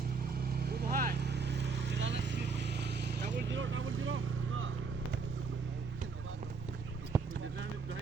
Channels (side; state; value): left; quieter; 4.9 dB